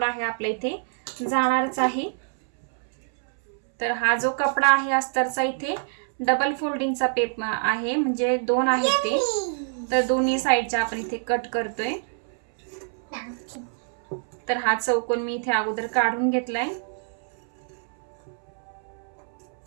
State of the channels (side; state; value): left; silent; 61 dB below the other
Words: आहे आपल्या इथे जाणारच आहे. तर हा जो कपडा आहे अस्तरचा इथे डबल फोल्डिंगचा पेप आहे, म्हणजे 2 आहेत ते. तर दोन्ही साईडच्या आपण इथे कट करतोय. तर हा चौकोन मी इथे अगोदर काढून घेतलाय.